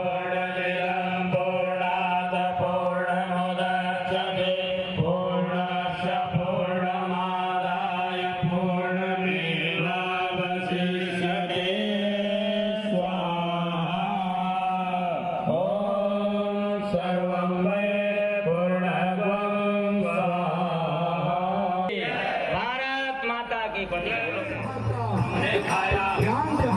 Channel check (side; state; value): both; identical; correlation 1.00